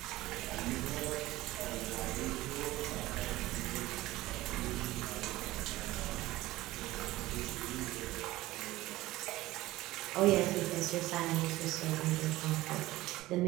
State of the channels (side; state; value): left; quieter; 17.5 dB